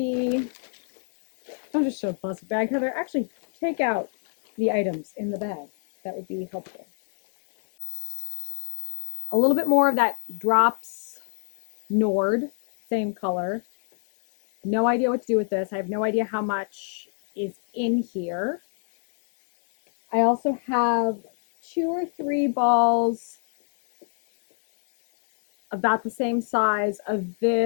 don't just show the plastic bag, Heather. Actually, take out the items in the bag. That would be helpful. A little bit more of that Drops Nord, same color. No idea what to do with this. I have no idea how much is in here. I also have 2 or 3 balls about the same size of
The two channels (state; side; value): silent; right; 60 dB below the other